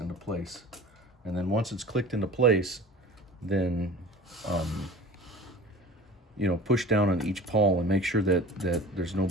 place. And then once it's clicked into place, then you know, push down on each pawl and make sure that there's no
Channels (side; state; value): both; normal; correlation 0.40